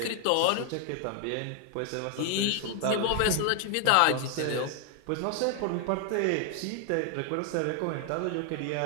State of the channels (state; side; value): different; both; correlation 0.00